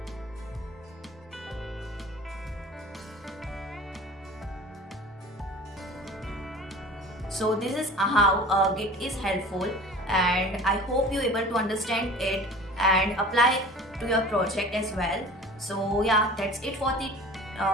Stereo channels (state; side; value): normal; both; correlation 0.41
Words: So this is how Git is helpful, and I hope you able to understand it and apply to your project as well. So yeah, that's it for the